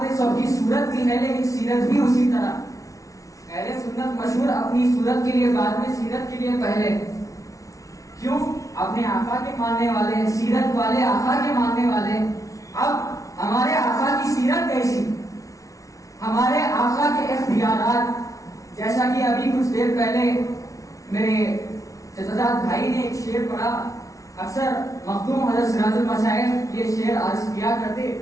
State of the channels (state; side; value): late; right; 0.16 ms